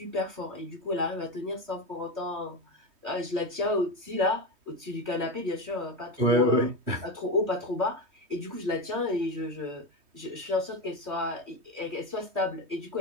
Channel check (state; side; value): late; left; 3.2 ms